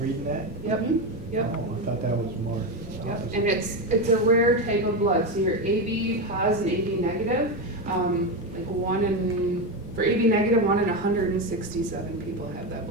that? Yep. Yep. Oh, I thought that was more. Yep. And it's a rare type of blood. So you're AB positive and AB negative. For AB negative, 1 in 167 people have that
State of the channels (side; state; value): both; normal; correlation 0.13